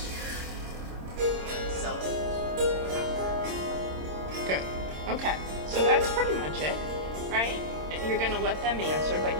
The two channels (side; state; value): left; late; 26 ms